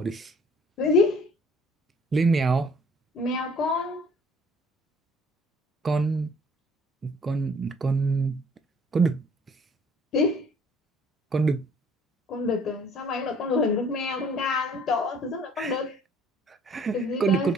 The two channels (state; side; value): normal; both; correlation 0.56